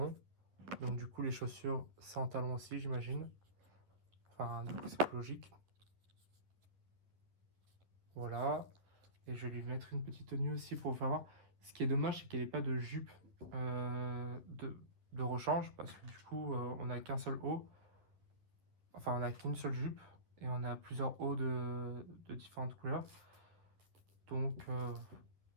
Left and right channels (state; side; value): late; left; 10 ms